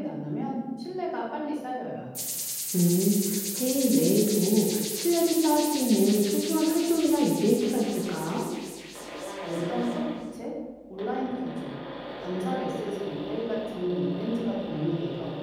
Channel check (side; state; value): both; identical; correlation 1.00